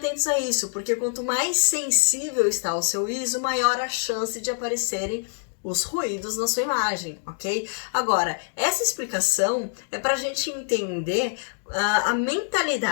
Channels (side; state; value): right; silent; digital silence